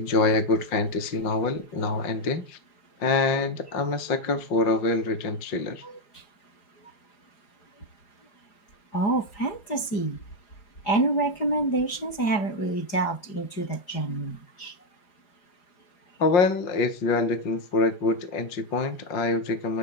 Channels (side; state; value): right; late; 4.9 ms